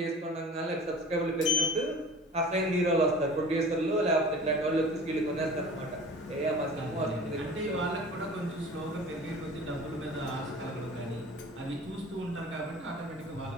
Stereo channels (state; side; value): normal; both; correlation 0.41